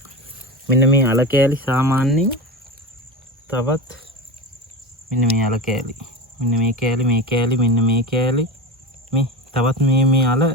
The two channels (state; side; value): normal; both; correlation 0.25